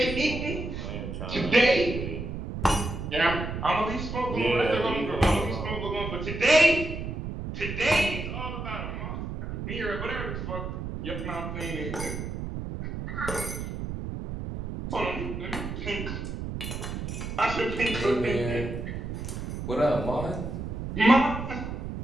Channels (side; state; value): right; noise; rumble, 5 dB below the sound